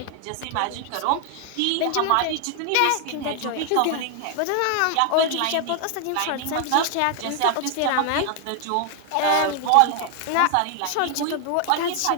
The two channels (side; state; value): both; different; correlation 0.00